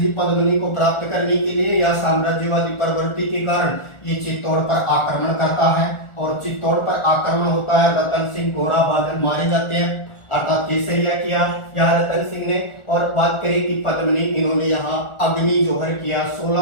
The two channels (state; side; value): late; right; 1.4 ms